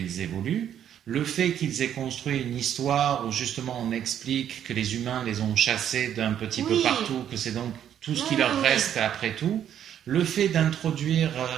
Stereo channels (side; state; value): left; quieter; 9.9 dB